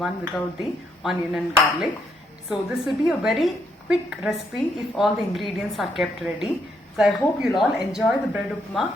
without the onion and garlic. So this will be a very quick recipe if all the ingredients are kept ready. So I hope you'll all enjoy the bread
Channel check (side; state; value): both; normal; correlation 0.74